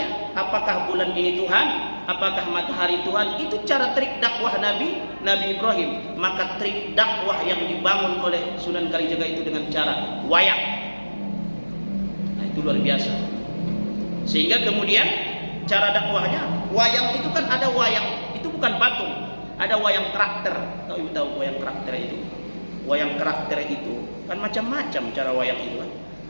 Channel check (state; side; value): inverted; both; correlation -1.00